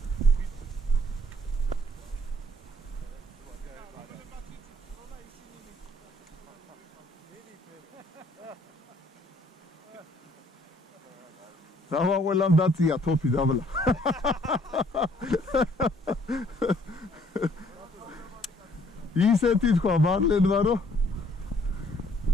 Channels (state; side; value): normal; both; correlation 0.62